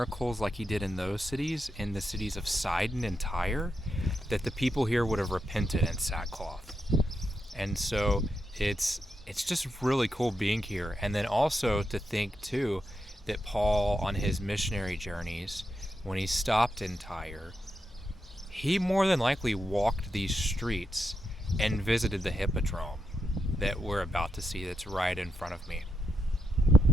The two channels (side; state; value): both; normal; correlation 0.85